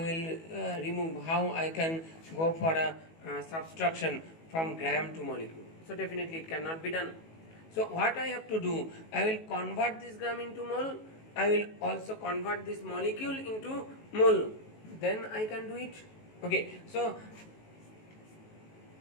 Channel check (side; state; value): right; late; 18 ms